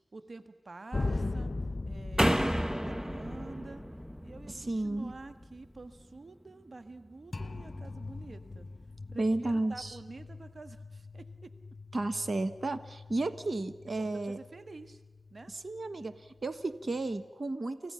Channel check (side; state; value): both; normal; correlation 0.97